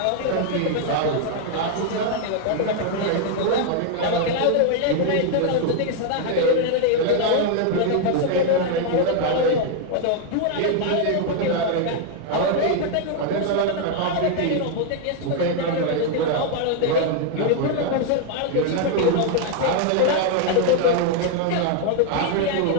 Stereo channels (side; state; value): both; different; correlation 0.00